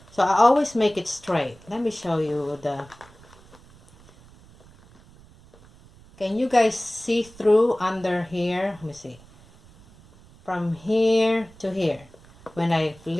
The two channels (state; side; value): noise; right; rumble, 25 dB below the sound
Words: So I always make it straight. Let me show you the, can you guys see through under here? Let me see. From here to here, when I